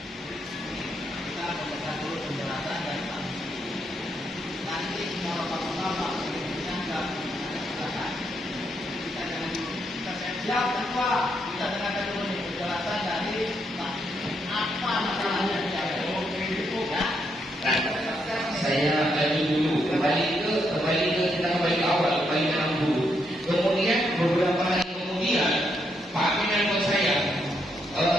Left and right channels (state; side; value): normal; both; correlation 0.78